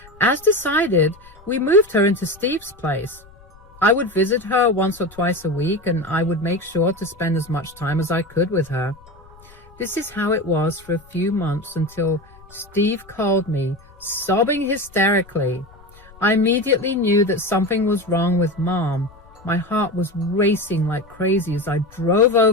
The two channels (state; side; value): noise; left; rumble, 25 dB below the sound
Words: As decided, we moved her into Steve's place. I would visit her once or twice a week, and I would make sure to spend as much time as I could with her. This is how it was for a few months until Steve called me, sobbing hysterically. I immediately knew that something was wrong with Mom. My heart was racing like crazy as I drove